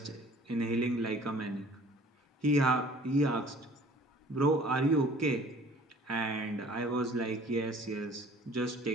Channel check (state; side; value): normal; both; correlation 0.51